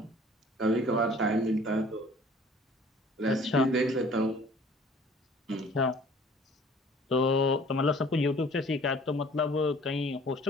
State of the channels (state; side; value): normal; both; correlation 0.52